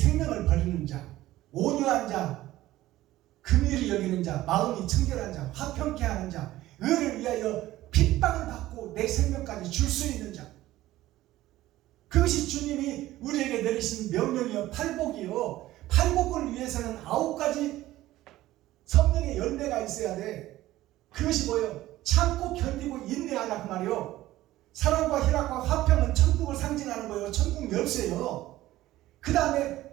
버리는 자, 온유한 자, 긍휼히 여기는 자, 마음이 청결한 자, 화평케 하는 자, 의를 위하여 핍박을 받고 내 생명까지 줄 수 있는 자. 그것이 주님이 우리에게 내리신 명령이요, 팔복이요. 팔복을 위해서는 9가지 성령의 열매가 있어야 돼. 그것이 뭐예요? 참고 견디고 인내하라 그 말이요. 사랑과 희락과 화평은 천국을 상징하는 거예요. 천국 열쇠요. 그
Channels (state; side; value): quieter; left; 15.7 dB